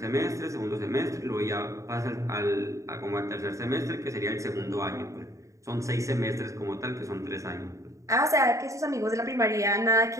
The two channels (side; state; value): left; late; 0.15 ms